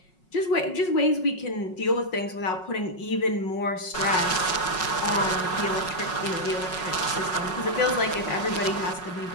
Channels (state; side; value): late; right; 5.5 ms